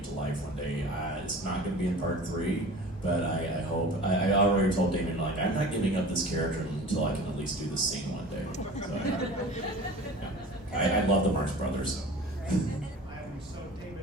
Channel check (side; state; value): both; normal; correlation 0.39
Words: to life one day. It's not going to be in part 3, but I hope. I already told Damien, like, I'm not giving up this character until I can at least do this scene one day. So I love the Marx Brothers. So. So